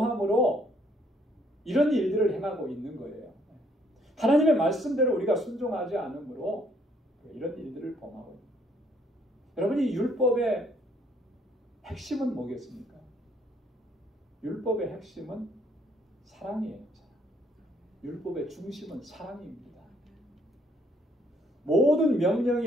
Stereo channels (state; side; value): normal; both; correlation 0.67